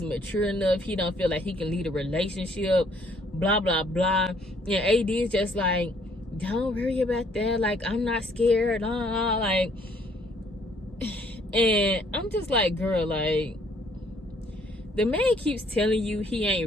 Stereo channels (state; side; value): normal; both; correlation 0.64